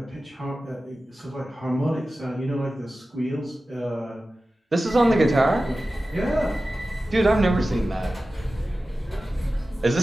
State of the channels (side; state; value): both; normal; correlation 0.95